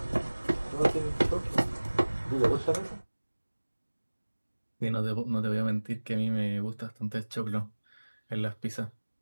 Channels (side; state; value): both; inverted; correlation -1.00